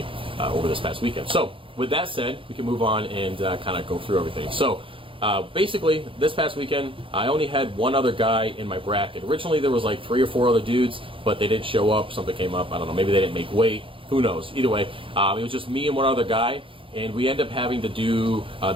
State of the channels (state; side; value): late; left; 0.25 ms